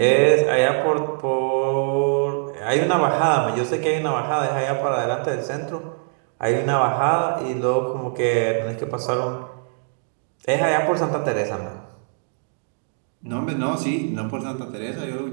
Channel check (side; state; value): left; silent; 64 dB below the other